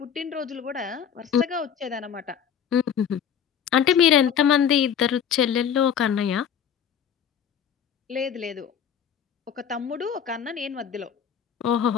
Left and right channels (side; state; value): right; quieter; 8.2 dB